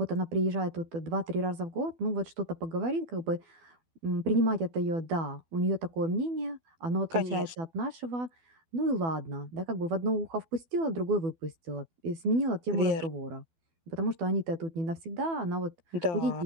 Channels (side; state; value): left; late; 12 ms